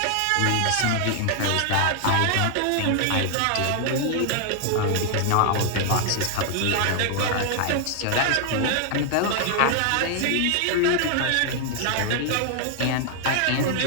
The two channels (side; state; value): both; different; correlation 0.00